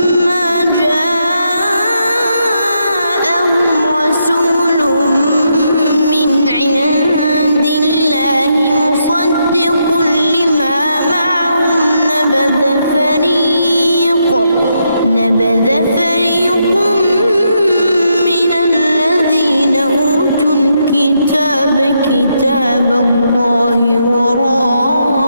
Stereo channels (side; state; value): both; inverted; correlation -0.80